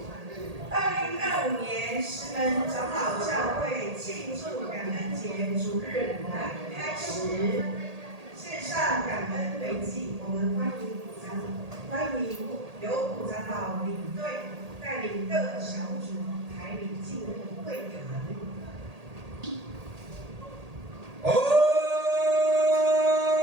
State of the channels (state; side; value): late; left; 1.8 ms